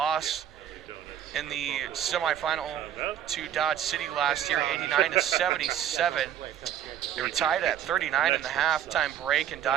in the semifinal to Dodge City last year, 89-77. They were tied at 39 in the halftime break, and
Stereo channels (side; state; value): left; quieter; 10.2 dB